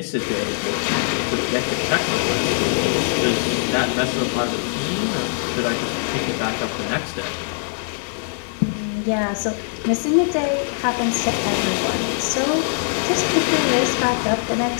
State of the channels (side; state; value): right; silent; digital silence